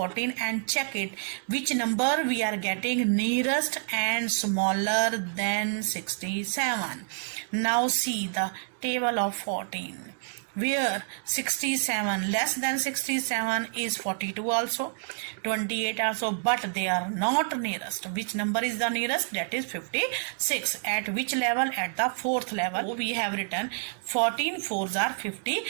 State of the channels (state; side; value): silent; left; digital silence